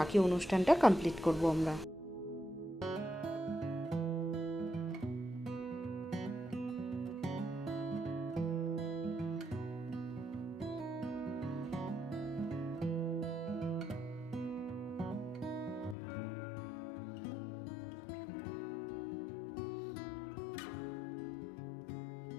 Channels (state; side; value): drops out; right; at 16.0 s